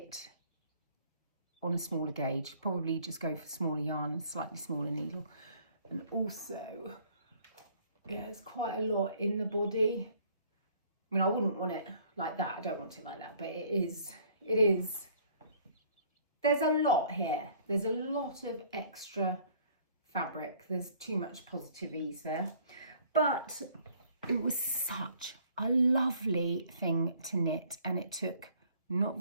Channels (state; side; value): inverted; both; correlation -0.58